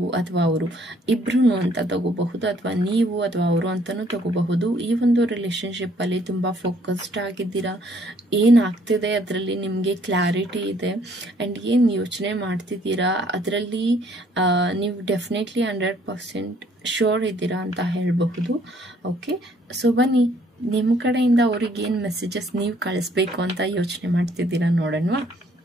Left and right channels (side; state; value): both; normal; correlation 0.63